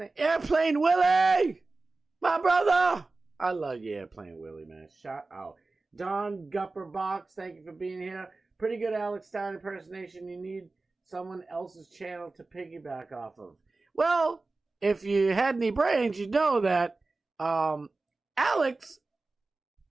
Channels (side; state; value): left; quieter; 3.5 dB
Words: Airplane Willie! My brother! I love you, Airplane Willie, man. Shout out. Don Gupperbox, thank you for being here. Pretty good Alex Stein impersonation. You need someone else's channel to piggyback off of. Well, if you had any brains, you'd know that Alex